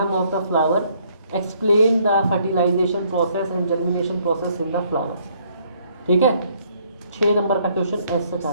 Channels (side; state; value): both; inverted; correlation -0.66